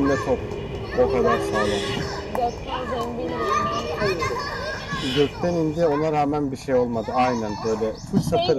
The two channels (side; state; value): both; identical; correlation 1.00